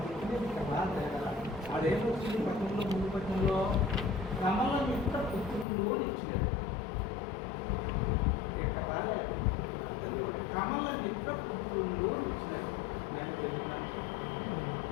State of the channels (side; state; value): right; drops out; at 5.7 s